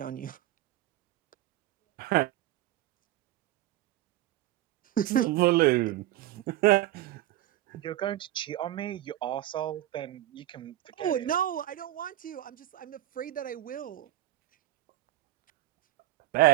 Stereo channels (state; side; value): quieter; left; 14.7 dB